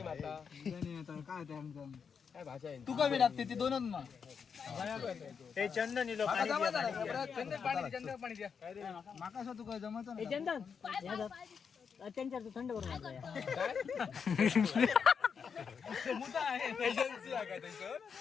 मारता काय ते आमचं काय भाषा आहे तू कमी टाकते ती दोनच मग हे चंदन इलो चंदन पाणी द्या माका असं तू काय जमत नाही चंदन त्यांच्या थंड करून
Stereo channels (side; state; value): right; quieter; 6.4 dB